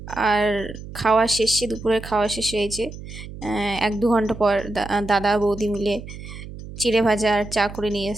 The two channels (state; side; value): noise; right; hum, 12 dB below the sound